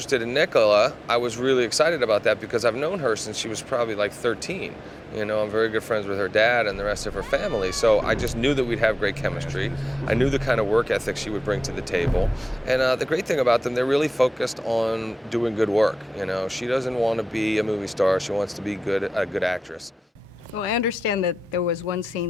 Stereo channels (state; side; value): normal; both; correlation 0.94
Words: in Nicola, I was really excited about that because I've known her since she was probably like 13. You know, I'm very good friends with her dad and the rest of her family, so I just knew that we'd have great chemistry. I knew the kind of work ethic she would bring to the table. And the great thing about them, they're really focused on doing good work. You know, she doesn't want to be a movie star, she wants to be a good actress. Well, I understand that there was one